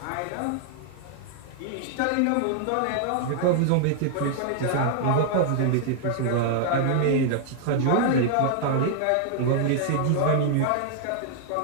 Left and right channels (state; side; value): different; both; correlation -0.01